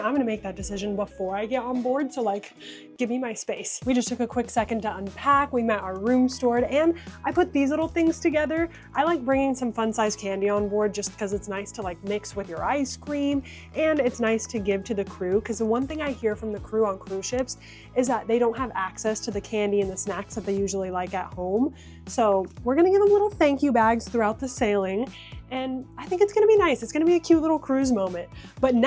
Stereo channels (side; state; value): both; identical; correlation 1.00